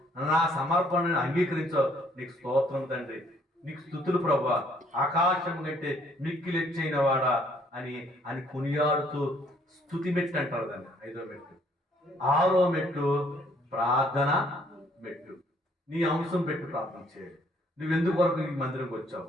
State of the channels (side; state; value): both; normal; correlation 0.64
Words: నా సమర్పణను అంగీకరించావు, నీకు స్తోత్రం తండ్రి, నీకు స్తుతులు ప్రభువా, ఆకాశం కంటే మిక్కిలెచ్చైన వాడా అని కొనియాడుతూ స్తుతి మెట్టు అంటారు దాన్ని. 5వ మెట్టు. 6వ మెట్టు ప్రార్థన మెట్టు. నీ అంశం పెట్టి ప్రార్థన చేయాలి. నువ్వు ఎందుకొరకు ఈ మందిరంకి